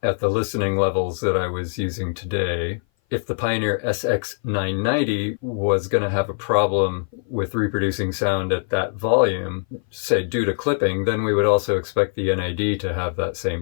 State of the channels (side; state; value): right; silent; 58 dB below the other